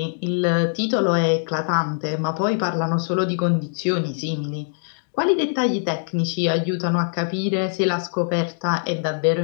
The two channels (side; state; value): right; silent; digital silence